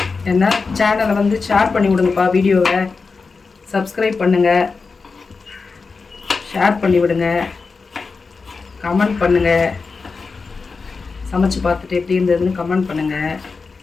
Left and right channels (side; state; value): right; quieter; 4.5 dB